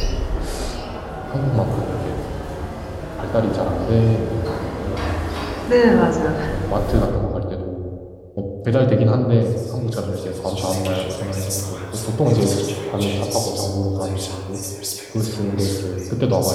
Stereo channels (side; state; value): both; identical; correlation 1.00